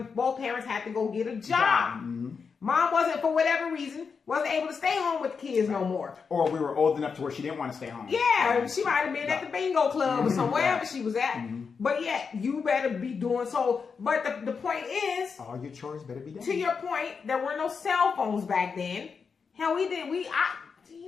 both parents had to go get a job. Mom wasn't, for whatever reason, wasn't able to stay home with the kids no more. Or we were old enough to where she didn't want to stay home. Yeah, she might have been at the bingo club or somewhere wherever she was at. But yeah, you better be doing so. But the point is, all your chores better be done. To your point, there were no cell phones back then. Hell, do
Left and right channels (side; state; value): right; quieter; 5.6 dB